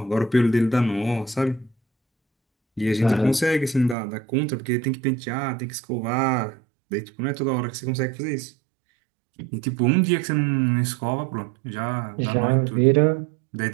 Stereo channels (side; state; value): left; drops out; at 4.0 s